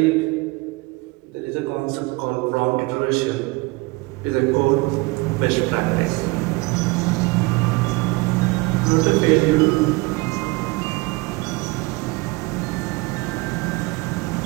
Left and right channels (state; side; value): quieter; left; 25.1 dB